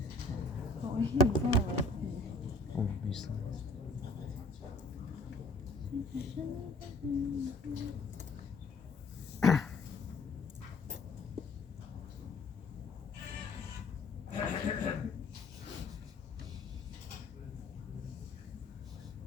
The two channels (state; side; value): quieter; right; 3.0 dB